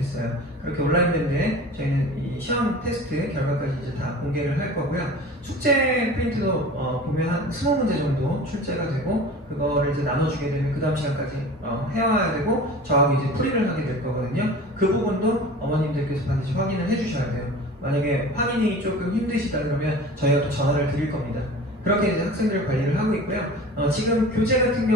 그렇게 온라인 대회에 저희는 이 시험 테스트 결과까지 이제 다 공개를 할 거고요. 숙제 프린트도 보면 한 20문제 정도 출제가 되고 그거를 이제 나눠주게 되면 그 다음 시간까지 해와야 되고 저하고 이제 풀이를 하게 될 거거든요. 그 부분도 어머님들께서 반드시 확인을 해주셔야 돼요. 만약에 확인이 조금 힘드시다 그러면 저희가 또 전화를 드릴 겁니다. 그렇게 이제 학생들 관리를 하고 있고요. 지금 교재 같은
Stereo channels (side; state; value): both; normal; correlation 0.39